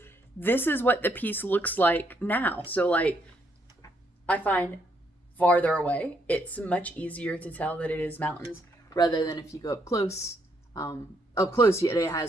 this is what the piece looks like now. So like, I find farther away, it's much easier to tell that it is mountains rather than if you go up close. Up close, it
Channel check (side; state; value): both; normal; correlation 0.73